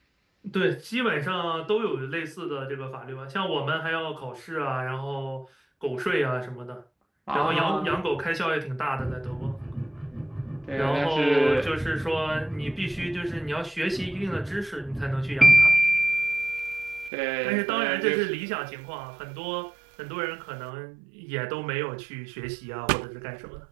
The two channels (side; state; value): left; drops out; at 17.1 s